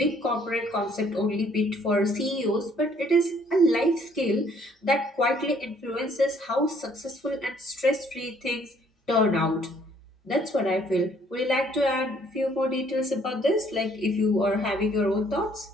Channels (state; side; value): normal; both; correlation 0.63